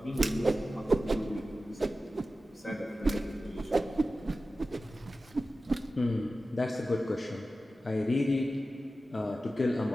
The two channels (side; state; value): both; normal; correlation 0.94